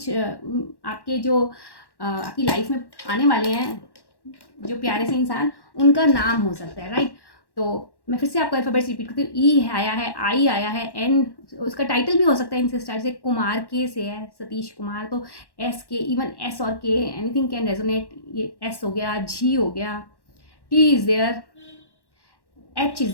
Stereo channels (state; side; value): late; right; 1.1 ms